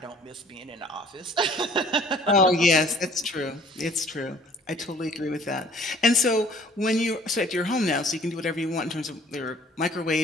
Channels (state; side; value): normal; both; correlation 0.54